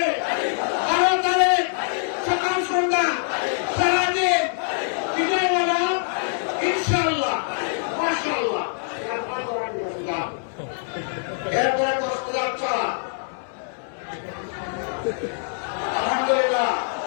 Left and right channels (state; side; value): silent; right; 62 dB below the other